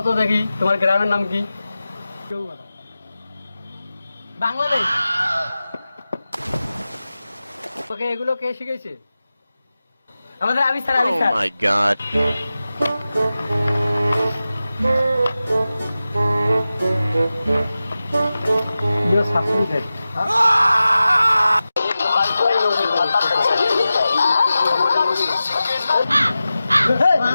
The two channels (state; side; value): inverted; both; correlation -0.95